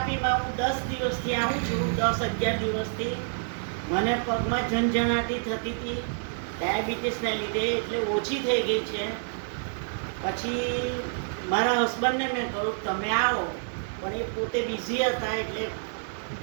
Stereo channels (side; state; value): left; silent; digital silence